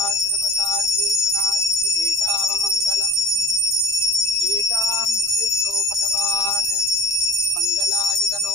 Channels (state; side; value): noise; right; rumble, 25 dB below the sound